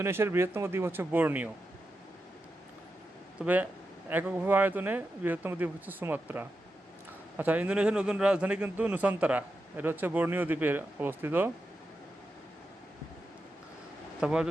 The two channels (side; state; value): both; normal; correlation 0.89